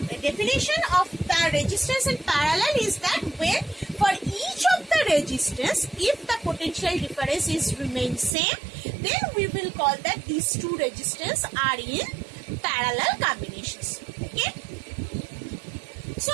definition of the resistance in parallel is that when for each of the resistance, if the potential difference is remain same, then we will call that these two resistors are in parallel combinations. Okay. So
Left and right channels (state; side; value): drops out; left; at 8.3 s